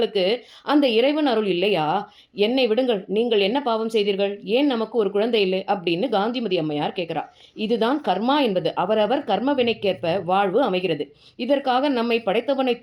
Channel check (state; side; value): identical; both; correlation 1.00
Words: அந்த இறைவன் அருள் இல்லையா? என்னை விடுங்கள், நீங்கள் என்ன பாவம் செய்தீர்கள்? ஏன் நமக்கு ஒரு குழந்தை இல்லை அப்படின்னு காந்திமதி அம்மையார் கேட்குறா. இதுதான் கர்மா என்பது. அவரவர் கர்ம வினைக்கேற்ப வாழ்வு அமைகிறது. இதற்காக நம்மை படைத்தவனை